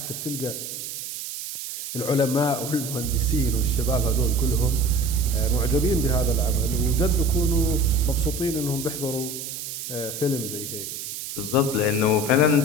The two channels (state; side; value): noise; right; hiss, 7 dB below the sound